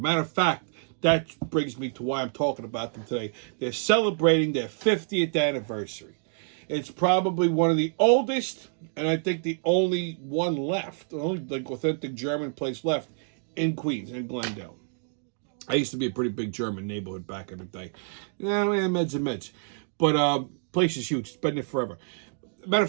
of fact, that brings me to why I'm talking about them today. They're celebrating their 50th anniversary. It's probably one of the oldest, and I think the only one left, the only like authentic German place left in Queens, in Glendale. I used to be a pretty big German neighborhood back in the day. Meds and meds. But place is huge. It's been there forever. Matter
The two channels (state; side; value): silent; left; digital silence